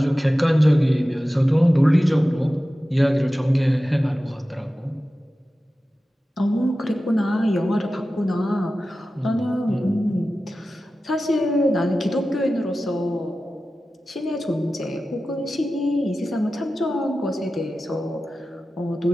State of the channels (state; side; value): normal; both; correlation 0.94